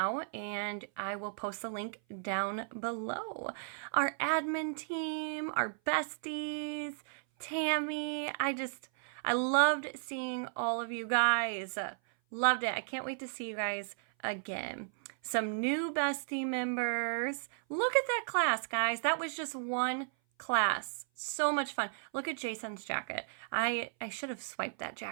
and I will post the link down below. Our admin team, our besties, Tammy, I loved seeing all of you guys. Loved it. I can't wait to see you guys again. Some new bestie members. Look at that class, guys. That was just one class. So much fun. Look at Jason's jacket. I should have swiped that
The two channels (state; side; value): silent; left; 55 dB below the other